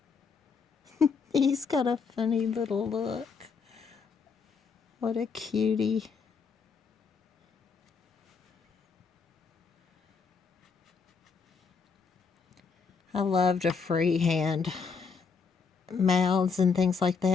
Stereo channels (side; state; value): right; quieter; 5.3 dB